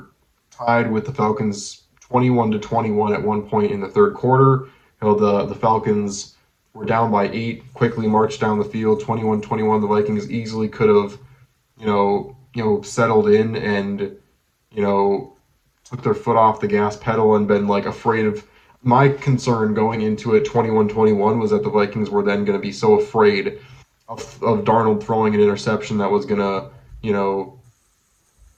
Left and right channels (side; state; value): both; identical; correlation 1.00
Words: tied with the Falcons 21-21 at one point in the third quarter. The Falcons were down by 8, quickly marched down the field, 21-21. The Vikings easily could have, settled in and, took their foot off the gas pedal and been afraid of. My concern going into it 21-21 was that the Vikings were then going to be so afraid of Darnold throwing an interception that was going to,